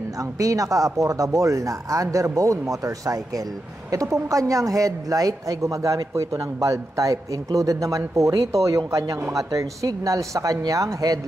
ang pinaka-affordable na underbone motorcycle. Ito pong kanyang headlight ay gumagamit po ito ng bulb type. Included naman po rito yung kanyang mga turn signals sa kanyang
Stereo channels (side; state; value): both; normal; correlation 0.87